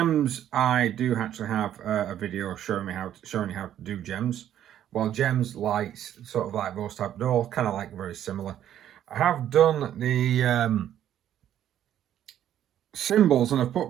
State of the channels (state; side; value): quieter; left; 10.9 dB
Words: I do actually have a video showing you how to do gems. Well, gems, lights, sort of like those type, they're all kind of like very similar. I have done the symbols, and I've put